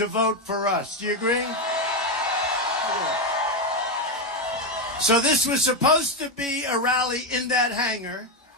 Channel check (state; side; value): normal; both; correlation 0.08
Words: vote for us. Do you agree? So this was supposed to be a rally in that hangar.